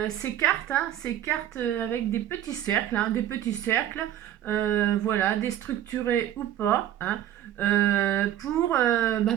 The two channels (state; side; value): quieter; left; 11.8 dB